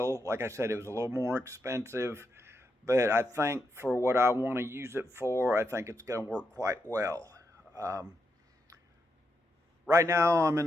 like I said, it was a little more expensive, but I think for what I want to use it for, I think it's going to work quite well. Right now I'm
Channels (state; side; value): normal; both; correlation 0.83